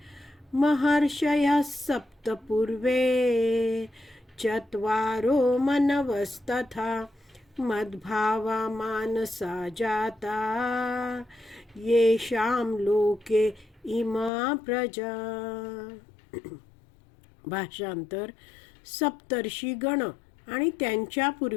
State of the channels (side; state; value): right; drops out; at 14.3 s